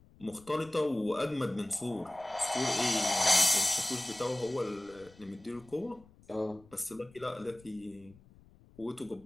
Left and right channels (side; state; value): left; noise; rumble, 25 dB below the sound